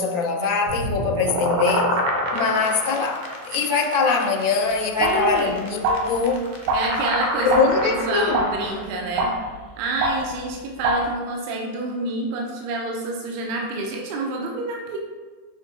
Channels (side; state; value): left; late; 23 ms